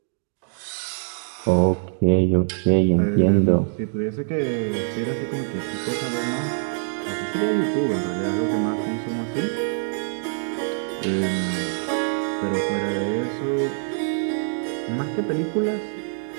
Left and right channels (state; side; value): silent; left; digital silence